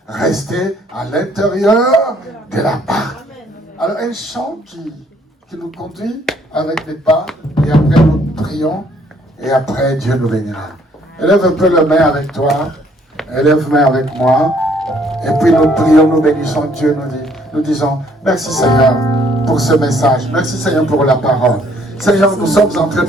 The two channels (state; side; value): normal; both; correlation 0.64